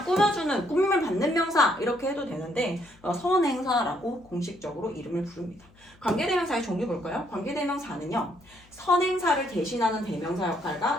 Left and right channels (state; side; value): noise; left; hum, 28 dB below the sound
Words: 꾸며주는, 꾸밈을 받는 명사 이렇게 해도 되는데 선행사라고 공식적으로 이름을 부릅니다. 관계대명사의 종류 볼까요? 관계대명사는요 선행사를 대신하는 대명사